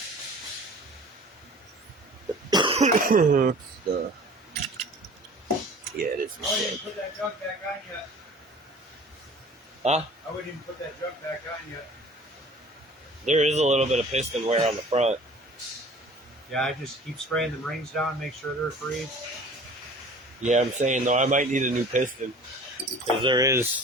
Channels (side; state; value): both; normal; correlation 0.45